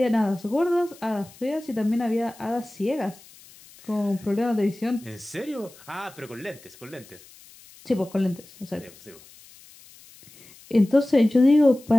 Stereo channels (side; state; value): left; noise; hiss, 23 dB below the sound